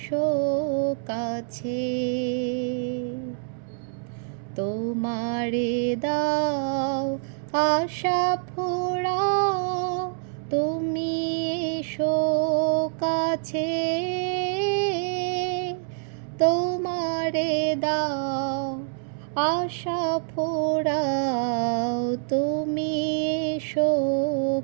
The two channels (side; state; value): left; silent; 61 dB below the other